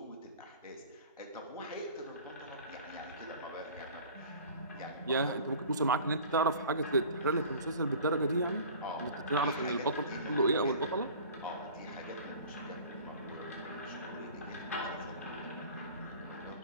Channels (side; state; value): both; inverted; correlation -0.43